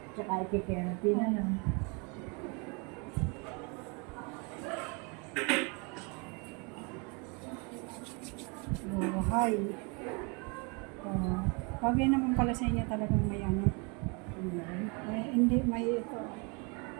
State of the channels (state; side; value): quieter; left; 32.0 dB